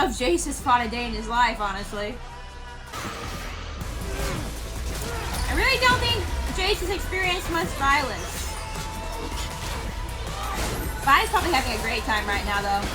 if Jayce has fought a day in his life, honestly. I really don't think Jayce has experienced much violence. Vi's probably having a great time right now, though.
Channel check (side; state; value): both; identical; correlation 1.00